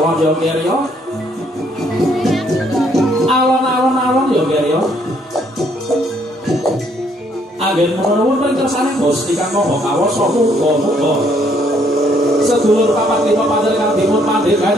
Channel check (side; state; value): both; normal; correlation 0.68